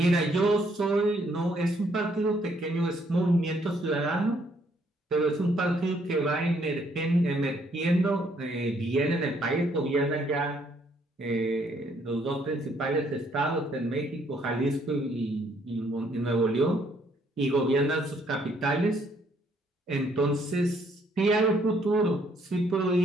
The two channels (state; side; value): normal; both; correlation 0.68